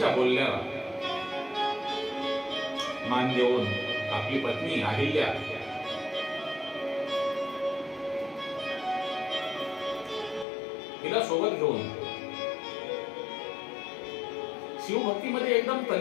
बोलण्याला मान देऊन आपली पत्नी अहिल्या तिला सोबत घेऊन शिवभक्तीमध्ये एकदम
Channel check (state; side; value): drops out; right; at 10.5 s